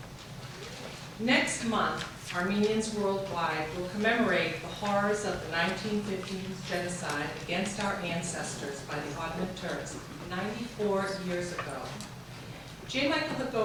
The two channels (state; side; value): identical; both; correlation 1.00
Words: Next month, Armenians worldwide will commemorate the horrors of the 1915 genocide against our ancestors by the Ottoman Turks 94 years ago. J. Michael